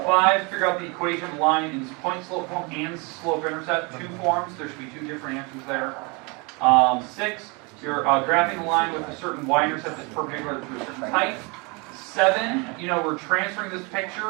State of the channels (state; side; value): quieter; left; 29.6 dB